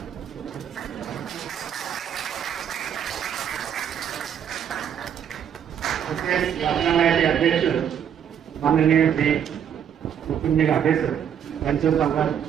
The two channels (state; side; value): quieter; left; 8.8 dB